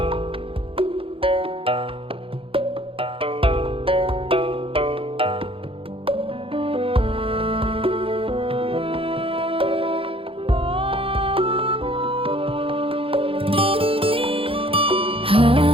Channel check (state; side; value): late; left; 0.27 ms